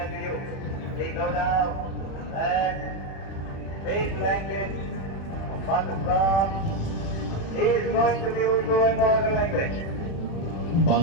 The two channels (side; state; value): right; late; 37 ms